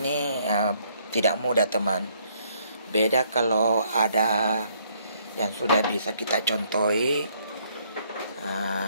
tidak mudah teman. Beda kalau ada yang sudah bisa kita contohi,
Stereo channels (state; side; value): inverted; both; correlation -0.68